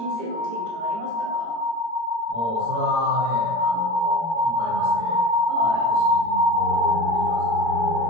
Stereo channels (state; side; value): late; left; 17 ms